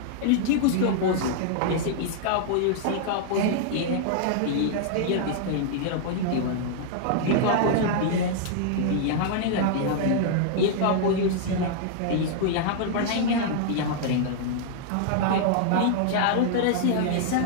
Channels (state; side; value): different; both; correlation -0.01